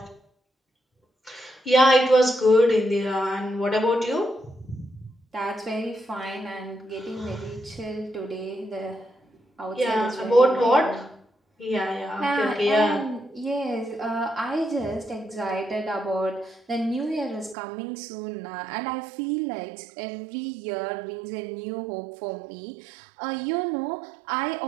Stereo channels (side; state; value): left; drops out; at 17.6 s